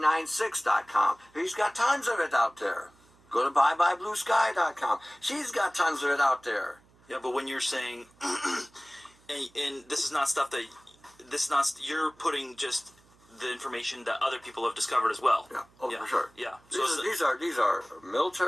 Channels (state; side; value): noise; right; hum, 30 dB below the sound